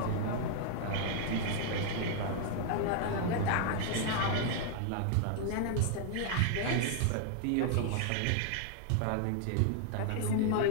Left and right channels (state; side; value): different; both; correlation 0.00